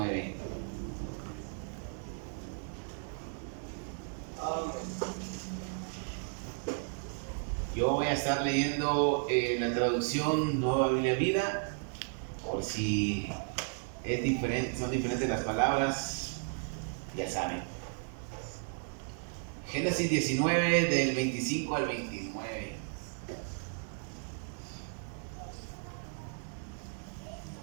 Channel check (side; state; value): left; silent; 55 dB below the other